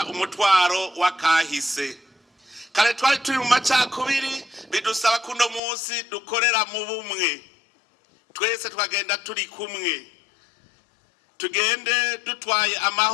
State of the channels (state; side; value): drops out; right; at 5.6 s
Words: umutwaro wa kahise. Kare twari turi mu macakubiri, bidusaba kuno munsi dukorera mu bumwe, twese twagenda turi kumwe, tugende dutwaye